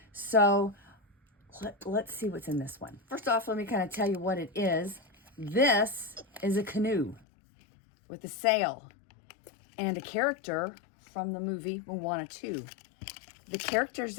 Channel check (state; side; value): drops out; right; at 7.2 s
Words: So let's see what's in this one. First off, let me kind of tell you what it is. This is a canoe with a sail and a character from the movie Moana 2. The characters